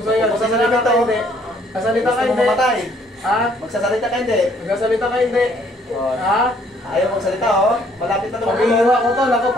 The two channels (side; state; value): both; normal; correlation 0.63